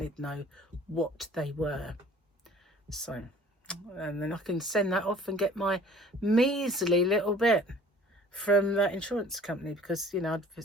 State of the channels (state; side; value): normal; both; correlation 0.51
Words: to know what they were. So, and then I can send that off and get my measly little bit from that insurance company, because, you know,